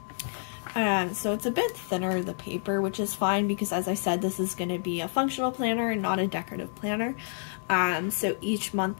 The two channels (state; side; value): silent; right; 59 dB below the other